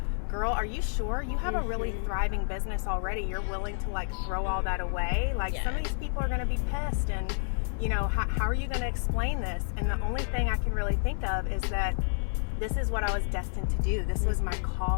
girl, are you sure you have a really thriving business already? You're willing to like throw all that away? Some of these people are going to be pissed, and how are you going to explain this? And the only thing I can really think of is that this is what I was destined to do. This was my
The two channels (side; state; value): right; silent; 58 dB below the other